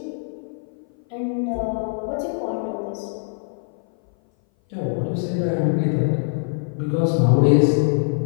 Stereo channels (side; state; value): right; silent; 58 dB below the other